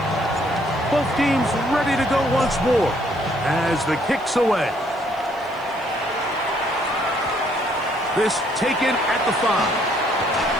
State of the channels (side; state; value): left; noise; hiss, 28 dB below the sound